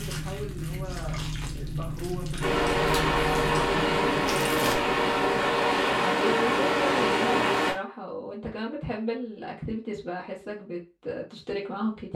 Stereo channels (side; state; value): both; identical; correlation 1.00